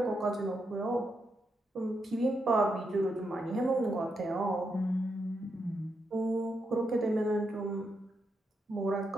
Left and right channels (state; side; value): normal; both; correlation 0.82